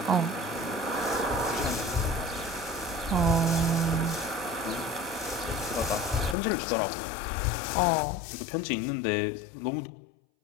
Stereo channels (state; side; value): drops out; right; at 6.4 s